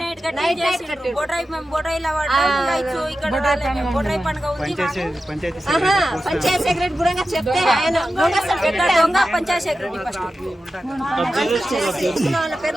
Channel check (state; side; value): normal; both; correlation 0.92